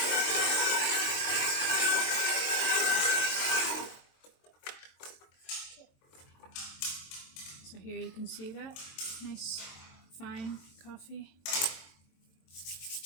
So here you can see that nice fine coffee.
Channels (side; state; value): right; late; 23 ms